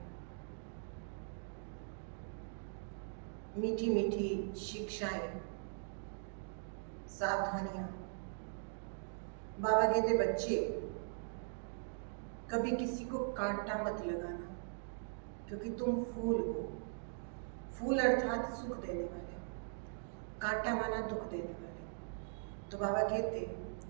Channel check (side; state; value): left; silent; digital silence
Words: मीठी मीठी शिक्षाएं, सावधानियां। बाबा कहते बच्चे कभी किसी को कांटा मत लगाना, क्योंकि तुम फूल हो। फूल अर्थात सुख देने वाले, कांटा माना दुख देने वाले। तो बाबा कहते